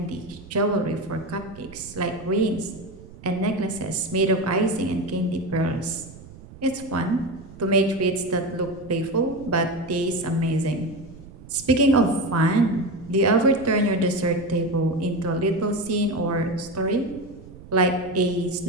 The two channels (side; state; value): right; noise; rumble, 18 dB below the sound